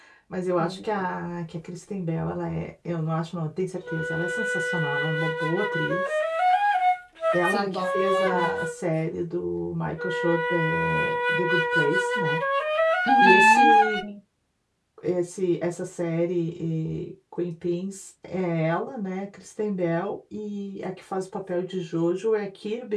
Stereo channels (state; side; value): identical; both; correlation 1.00